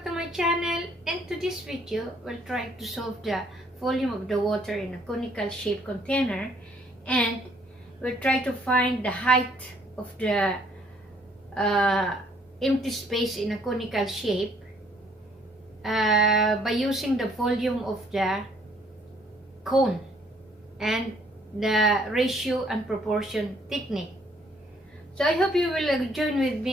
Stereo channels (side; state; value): both; normal; correlation 0.64